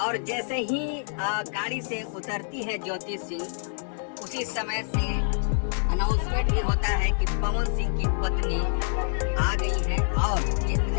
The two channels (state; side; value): silent; right; 60 dB below the other